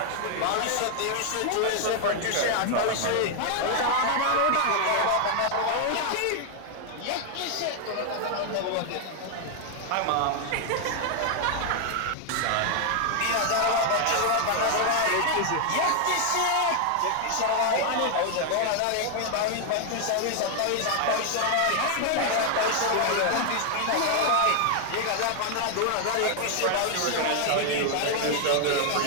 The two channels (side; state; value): both; different; correlation 0.00